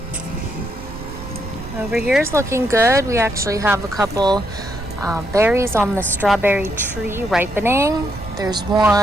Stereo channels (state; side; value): noise; right; rumble, 13 dB below the sound